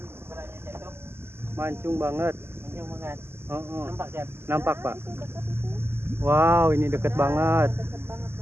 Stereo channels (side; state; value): left; late; 0.12 ms